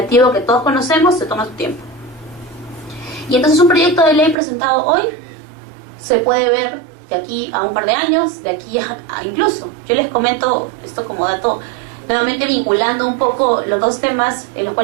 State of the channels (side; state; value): left; drops out; at 4.4 s